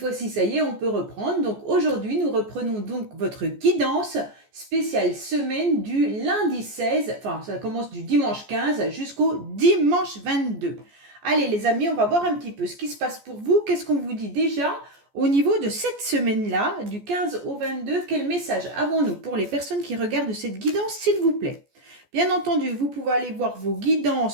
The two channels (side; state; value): left; late; 14 ms